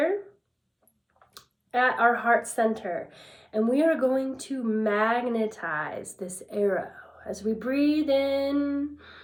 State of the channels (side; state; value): both; identical; correlation 1.00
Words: at our heart center. And we are going to magnetize this arrow. As we breathe in,